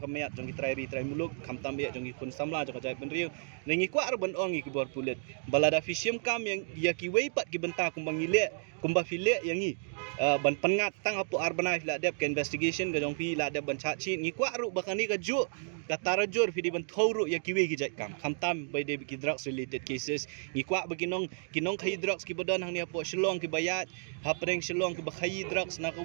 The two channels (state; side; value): silent; left; digital silence